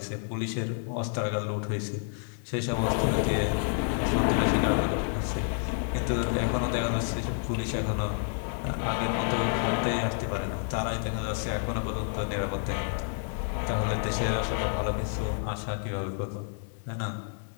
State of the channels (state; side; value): silent; right; 58 dB below the other